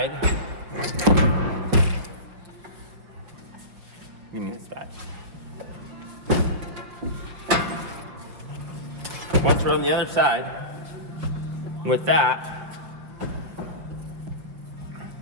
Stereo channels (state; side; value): late; left; 5.7 ms